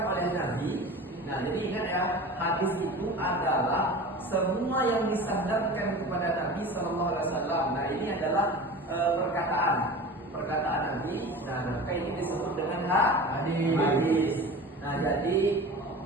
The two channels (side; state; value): both; normal; correlation 0.35